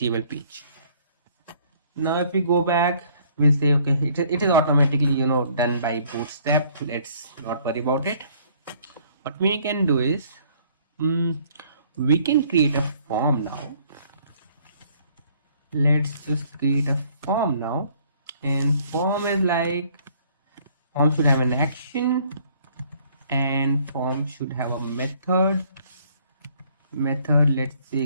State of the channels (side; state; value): both; inverted; correlation -0.61